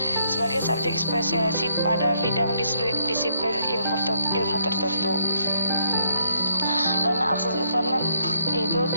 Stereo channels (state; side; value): inverted; both; correlation -0.73